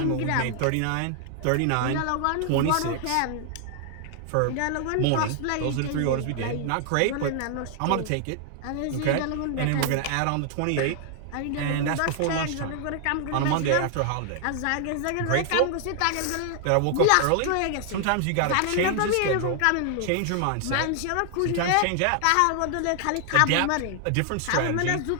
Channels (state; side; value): different; both; correlation 0.00